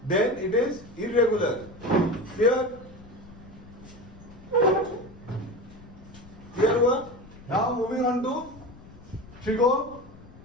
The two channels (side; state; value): left; noise; rumble, 20 dB below the sound